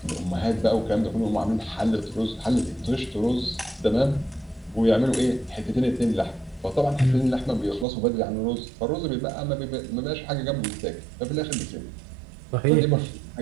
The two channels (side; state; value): left; drops out; at 7.9 s